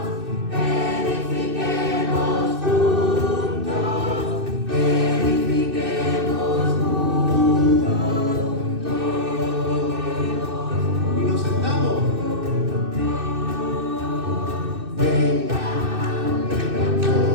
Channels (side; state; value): left; late; 2.6 ms